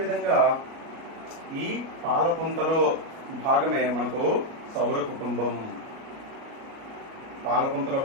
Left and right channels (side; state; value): left; late; 37 ms